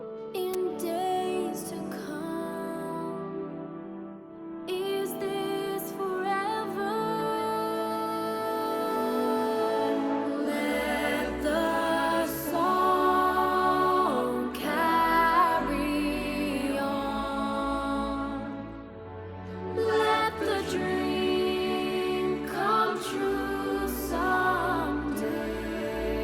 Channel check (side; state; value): both; identical; correlation 1.00